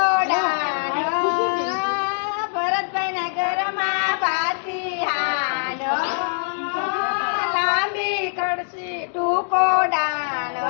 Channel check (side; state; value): right; silent; digital silence